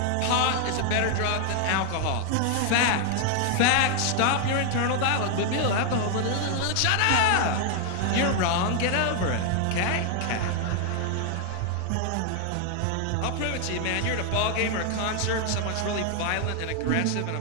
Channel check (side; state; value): both; different; correlation 0.00